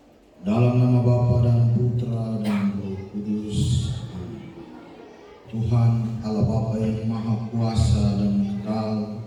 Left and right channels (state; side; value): identical; both; correlation 1.00